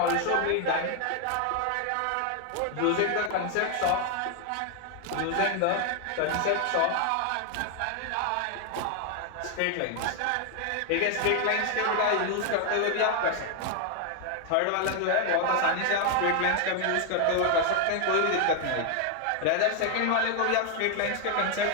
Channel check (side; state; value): both; different; correlation 0.01